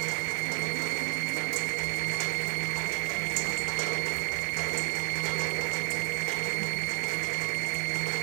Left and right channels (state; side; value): quieter; left; 36.7 dB